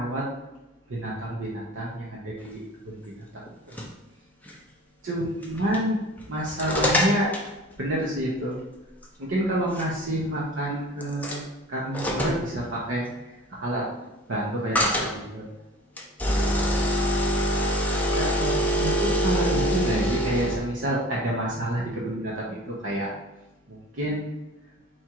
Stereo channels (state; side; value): normal; both; correlation 0.41